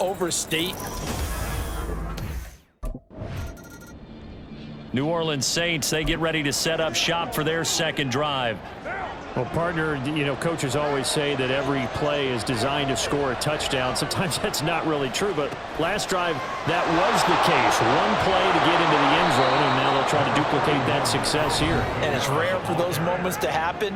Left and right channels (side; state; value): both; identical; correlation 1.00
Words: New Orleans Saints, they get ready to set up shop for their second drive. Well, partner, you know, coaches always say that every play is designed to score a touchdown. Sometimes that's not really true, but last drive, that was the case. One play to get into the end zone, and now they'll try to duplicate that success here. And it's rare for those moments to